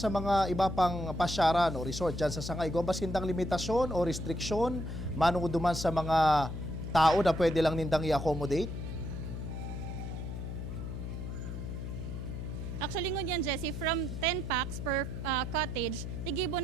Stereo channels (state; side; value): noise; left; hum, 6 dB below the sound